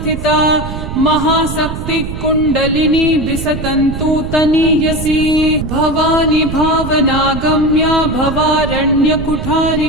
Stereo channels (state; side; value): noise; right; rumble, 7 dB below the sound